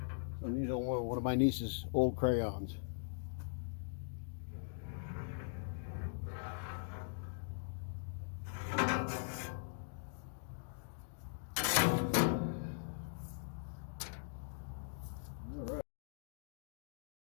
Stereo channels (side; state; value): right; silent; digital silence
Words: I'm using one of my niece's old crayons.